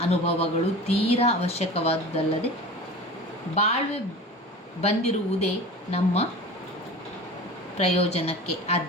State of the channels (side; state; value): both; normal; correlation 0.35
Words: ಅನುಭವಗಳು ತೀರಾ ಅವಶ್ಯಕವಾದುದಲ್ಲದೆ ಬಾಳ್ವೆ ಬಂದಿರುವುದೇ ನಮ್ಮ ಪ್ರಯೋಜನಕ್ಕೆ.